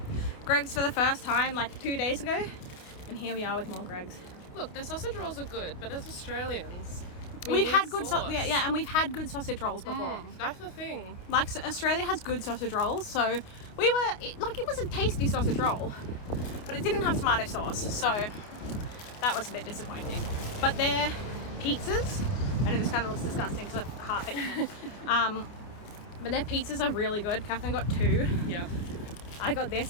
Greg's for the first time like 2 days ago, and here we are with more Greg's. Look, their sausage rolls are good, but as Australians, We've need had good sauce. and we've had good sausage rolls before. That's the thing. Like, so Australia has good sausage rolls, so it was a tasty sausage roll, but it didn't have tomato sauce, so that was a bit disappointing. But their pizzas, I know this kind of looks disgusting because I've half eaten it, but their pizzas are really good. Katherine got 2. Yeah. I got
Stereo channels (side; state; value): right; late; 29 ms